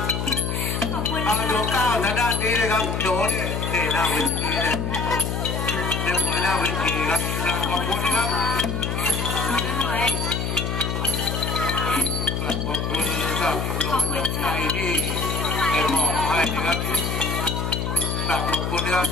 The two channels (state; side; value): noise; left; hum, 1 dB below the sound